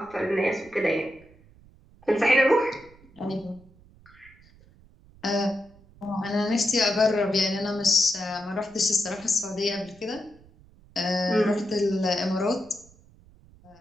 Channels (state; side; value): noise; right; rumble, 26 dB below the sound